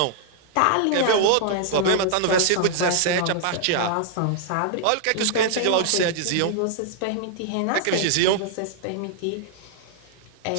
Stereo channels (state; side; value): different; both; correlation -0.01